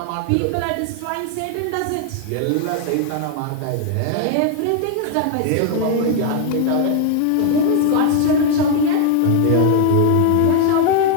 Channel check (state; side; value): different; both; correlation 0.00